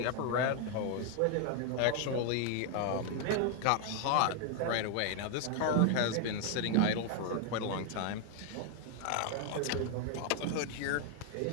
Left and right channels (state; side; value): different; both; correlation 0.00